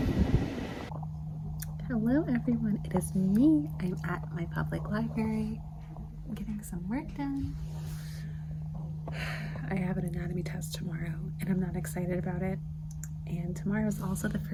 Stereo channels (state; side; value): identical; both; correlation 1.00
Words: Hello everyone, it is me. I'm at my public library. I'm getting some work done. I have an anatomy test tomorrow and I'm not excited about it. And tomorrow is also the